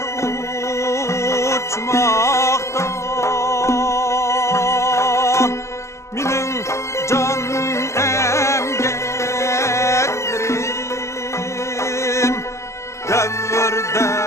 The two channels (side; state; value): right; late; 0.14 ms